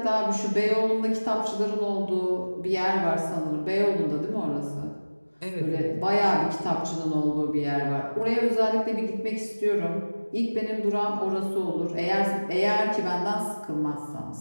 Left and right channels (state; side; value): inverted; both; correlation -1.00